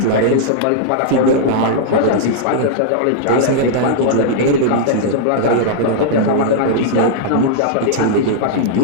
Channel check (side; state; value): both; different; correlation -0.02